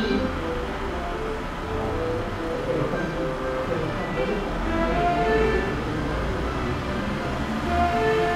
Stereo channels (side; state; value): both; identical; correlation 1.00